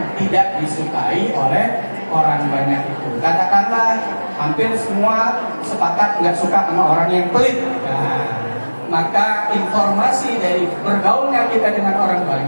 tidak disukai oleh orang banyak itu. Katakanlah hampir semua sepakat nggak suka sama orang yang pelit. Nah, maka informasi dari bergaulnya kita dengan orang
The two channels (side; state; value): both; inverted; correlation -1.00